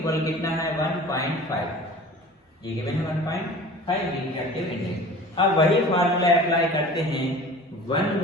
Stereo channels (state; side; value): normal; both; correlation 0.41